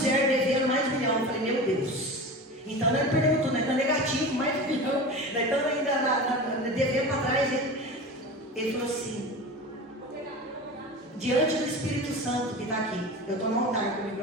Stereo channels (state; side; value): normal; both; correlation 0.31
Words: devendo mais de 1 milhão. Eu falei, meu Deus. Então nós perdemos tudo, nós estamos negativo, mais de 1 milhão, nós estamos ainda devendo para trás. Ele falou assim, diante do Espírito Santo que está aqui, eu estou no altar com o